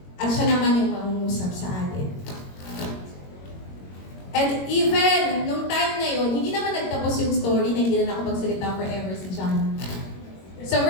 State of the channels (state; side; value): late; right; 21 ms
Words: At siya naman yung mangungusap sa atin. And even nung time na yun, hindi naman nagtapos yung story na hindi na nakapagsalita forever si John. Sa